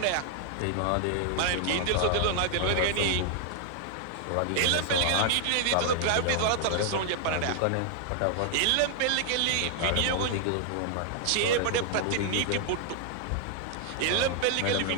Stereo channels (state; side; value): different; both; correlation 0.00